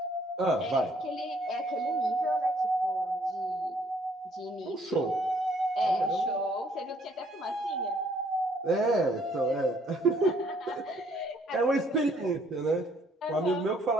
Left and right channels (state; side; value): normal; both; correlation 0.64